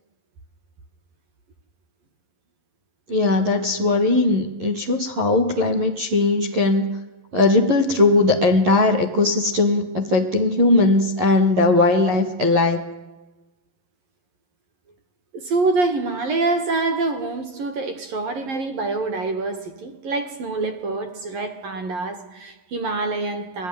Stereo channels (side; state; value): left; late; 11 ms